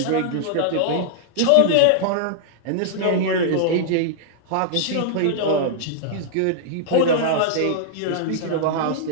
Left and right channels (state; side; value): different; both; correlation -0.01